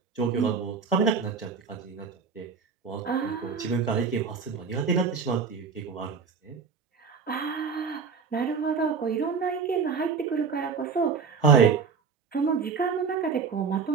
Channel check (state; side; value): quieter; left; 5.6 dB